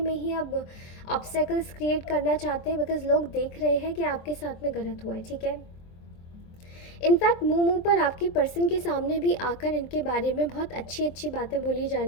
ही अब ऑब्स्टेकल्स क्रिएट करना चाहते हैं, बिकॉज़ लोग देख रहे हैं कि आपके साथ में गलत हुआ है। ठीक है, इनफैक्ट मुंह पर आपके पर्सन के सामने भी आकर इनके बारे में बहुत अच्छी अच्छी बातें बोली जा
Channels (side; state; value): right; late; 23 ms